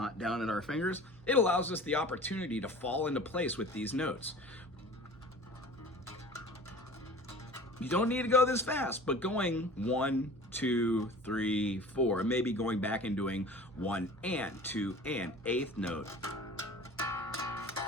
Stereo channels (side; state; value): right; noise; hum, 23 dB below the sound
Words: down at our fingers. It allows us the opportunity to fall into place with these notes. You don't need to go this fast, but going 1, 2, 3, 4, maybe going back and doing 1 and 2 and 8th note.